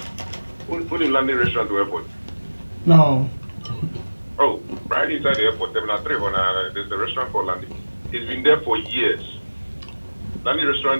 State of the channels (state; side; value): inverted; both; correlation -1.00